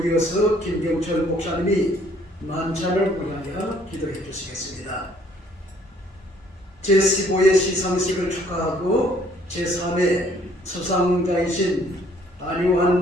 이어서 김경철 목사님이 만찬을 위하여 기도해 주시겠습니다. 제15회 시상식을 축하하고 제3회 수상자이신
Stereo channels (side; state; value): both; normal; correlation 0.61